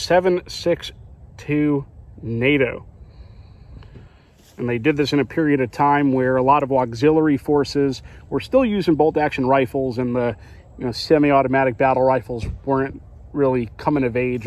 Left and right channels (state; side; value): identical; both; correlation 1.00